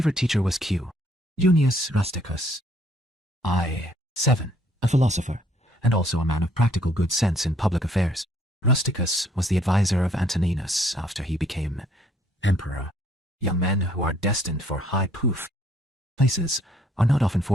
teacher was Q. Junius Rusticus. 7. A philosopher, and also a man of practical good sense in public affairs. Rusticus was the advisor of Antoninus after he became emperor. Young men who are destined for high places are not often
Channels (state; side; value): normal; both; correlation 0.65